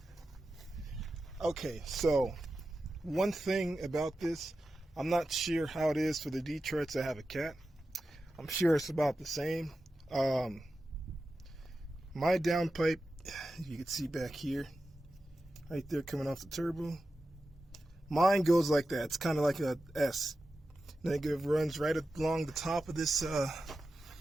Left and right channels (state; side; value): normal; both; correlation 0.92